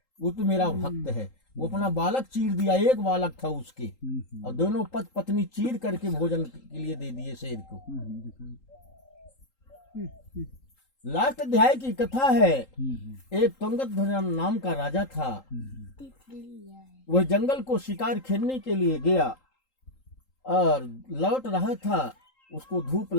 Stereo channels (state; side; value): late; right; 3.8 ms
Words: वो तो मेरा भक्त है। वो अपना बालक चीर दिया, एक बालक था उसके, और दोनों पत्नी चीर करके भोजन के लिए दे दिए शेर को। लास्ट अध्याय की कथा है, एक तुंगध्वज नाम का राजा था। वह जंगल को शिकार खेलने के लिए गया और लौट रहा था, उसको धूप